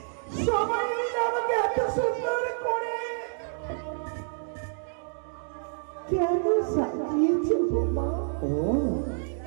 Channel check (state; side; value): silent; left; digital silence